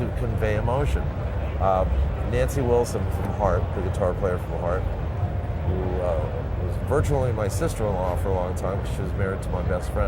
convey emotion. Nancy Wilson from Heart, the guitar player from Heart, who was virtually my sister-in-law for a long time because she was married to my best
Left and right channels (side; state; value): both; identical; correlation 1.00